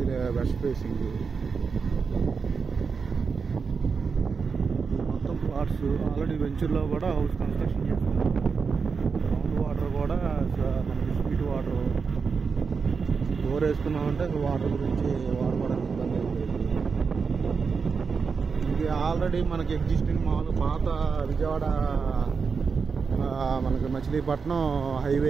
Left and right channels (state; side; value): quieter; left; 5.3 dB